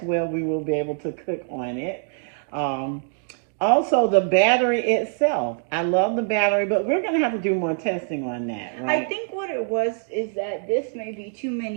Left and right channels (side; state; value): left; silent; 61 dB below the other